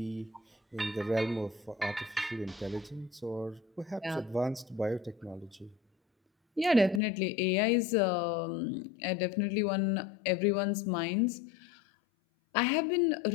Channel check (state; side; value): drops out; right; at 7.0 s